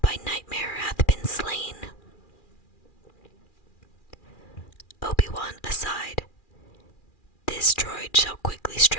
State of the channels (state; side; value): late; right; 2.4 ms